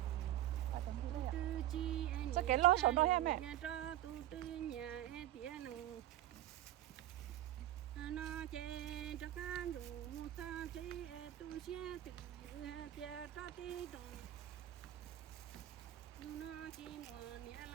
Bài tóm thu đây à? Sao cái lo sổ nó em mẹ? Nhà cho tu tư nhà em tía nó chê cho cá đủ sao chê tu xe từ tía cho tí đồng nó chỉ mùa nhẹ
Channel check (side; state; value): left; quieter; 13.4 dB